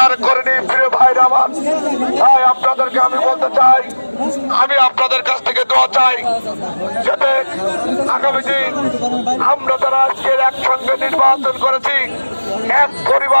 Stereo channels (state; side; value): inverted; both; correlation -1.00